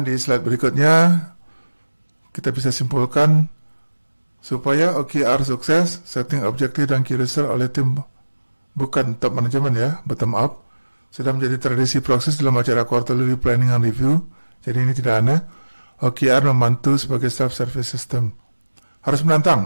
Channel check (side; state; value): both; inverted; correlation -1.00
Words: di slide berikutnya, kita bisa simpulkan supaya OKR sukses, setting objektif dan key result oleh tim bukan top management ya, bottom up, sudah menjadi tradisi Proxys dalam acara quarterly planning and review. Jadi ini tidak aneh. OKR membantu sebagai self-service system. Harus